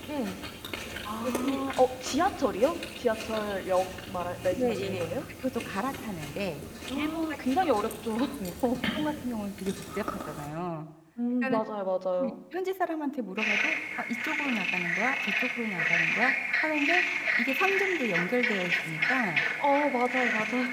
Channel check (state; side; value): identical; both; correlation 1.00